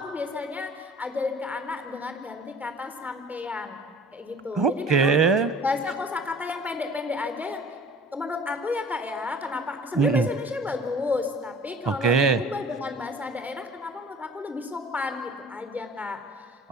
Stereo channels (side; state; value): both; normal; correlation 0.47